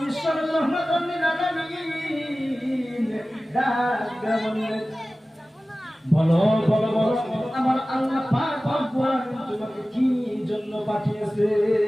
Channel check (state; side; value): normal; both; correlation 0.96